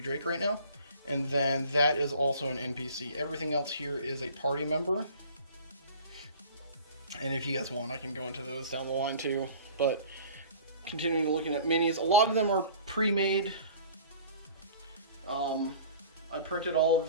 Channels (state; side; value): inverted; both; correlation -0.46